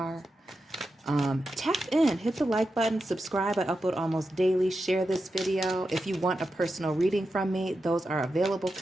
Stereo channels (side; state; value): both; normal; correlation 0.89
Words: Tap in, hit the like button, subscribe. I upload almost daily. Share this video. If you want a personal reading from me, those are available